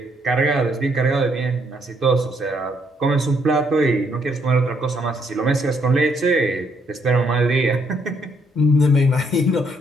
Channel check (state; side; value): normal; both; correlation 0.71